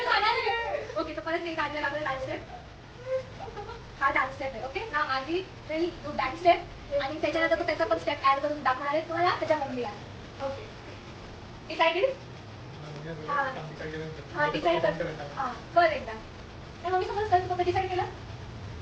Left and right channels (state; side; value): identical; both; correlation 1.00